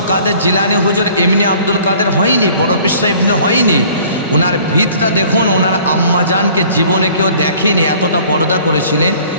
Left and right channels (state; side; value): inverted; both; correlation -0.52